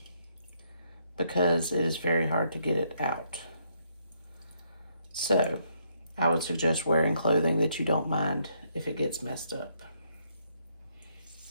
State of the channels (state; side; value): inverted; both; correlation -0.73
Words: because it is very hard to get it out. So I would suggest wearing clothing that you don't mind if it gets messed up.